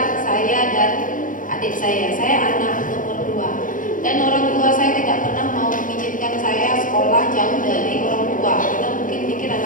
dan adik saya. Saya anak nomor 2. Dan orang tua saya tidak pernah mau mengizinkan saya sekolah jauh dari orang tua. Karena mungkin pikir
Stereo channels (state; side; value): late; right; 0.39 ms